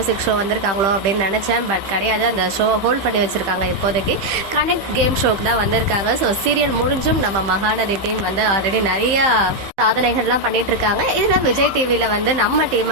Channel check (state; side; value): late; left; 15 ms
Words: ஷோ வந்திருக்காங்களோ அப்படின்னு நினச்சேன். பட் கிடையாது, அந்த ஷோ ஹோல்ட் பண்ணி வச்சுருக்காங்க. இப்போதைக்கு கனெக்ட் கேம் ஷோக்கு தான் வந்திருக்காங்க. ஸோ சீரியல் முடிஞ்சும் நம்ம மகாநதி டீம் வந்து ஆல்ரெடி நிறையா சாதனைகள்லாம் பண்ணிட்டு இருக்காங்க. இதில் விஜய் டிவியில் வந்து நம்ம